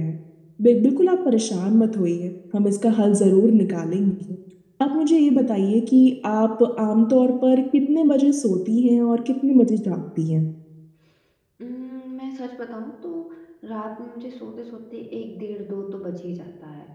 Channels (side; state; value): both; identical; correlation 1.00